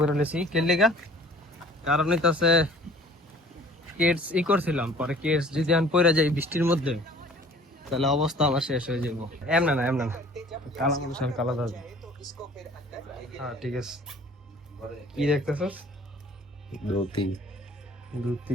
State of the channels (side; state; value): both; normal; correlation 0.50